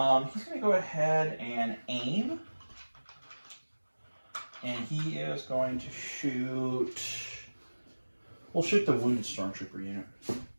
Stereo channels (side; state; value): both; inverted; correlation -1.00